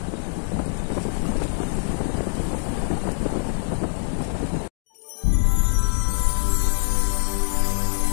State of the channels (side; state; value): right; silent; digital silence